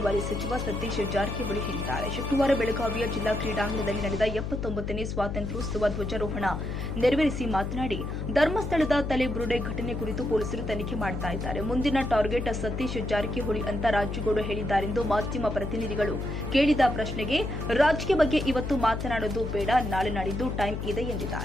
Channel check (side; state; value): left; noise; hum, 4 dB below the sound